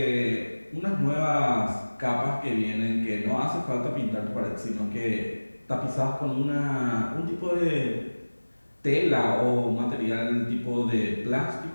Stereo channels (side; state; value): both; inverted; correlation -1.00